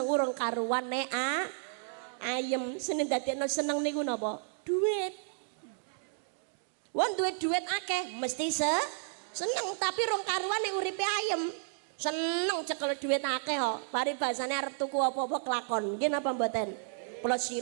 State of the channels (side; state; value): left; silent; digital silence